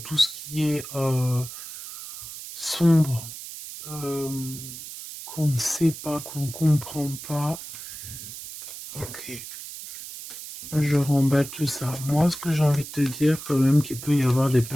ce qui est sombre, qu'on ne sait pas, qu'on ne comprend pas. Ok. Je remballe tout ça. Moi, ce que j'ai envie de te dire, quand même, qu'il peut y avoir des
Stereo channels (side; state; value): right; noise; hiss, 11 dB below the sound